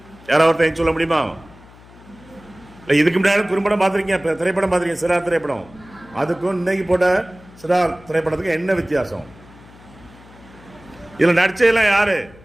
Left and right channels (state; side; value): noise; left; hum, 23 dB below the sound